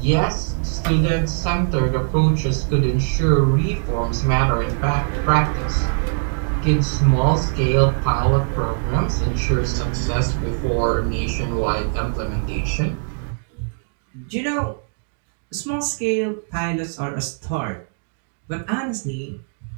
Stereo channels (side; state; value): left; silent; digital silence